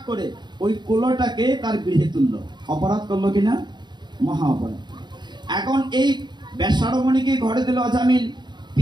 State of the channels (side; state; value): left; late; 0.21 ms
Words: করে ওই কুলোটাকে তার গৃহে তুললো। অপরাধ করলো কিনা? মহা অপরাধ। এখন এই বেশ্যা রমণীকে ঘরে দিল অজামিল,